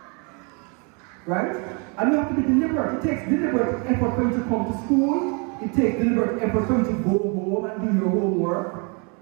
Right? And you have to be deliberate. It takes deliberate effort for you to come to school. It takes deliberate effort for you to go home and do your homework.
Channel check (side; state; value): left; quieter; 34.3 dB